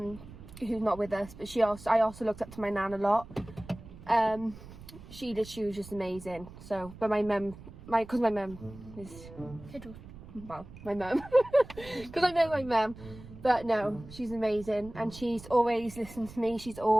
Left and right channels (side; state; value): right; noise; rumble, 17 dB below the sound